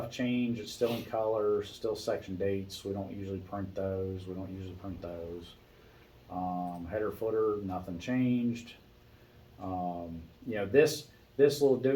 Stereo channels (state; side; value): identical; both; correlation 1.00